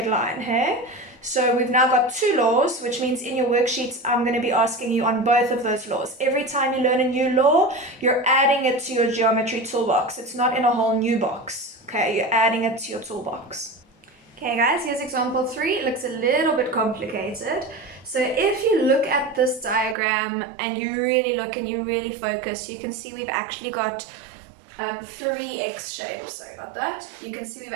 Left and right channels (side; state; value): left; drops out; at 20.0 s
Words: line, hey? So we've now got two laws, which means in your worksheets, I'm going to be asking you on both of those laws. Every time you learn a new law, you're adding it to your geometry toolbox. It's not in a whole new box, okay? You're adding it to your toolbox. Okay guys, here's example 3. It looks a little bit complicated. So if you look at this diagram and you really look and you really focus, you can see we've actually got 3 X shapes. Sorry about that. You can see we've